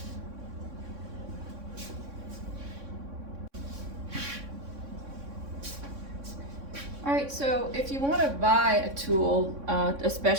Alright, so if you want to buy a tool, a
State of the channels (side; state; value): left; late; 3.6 ms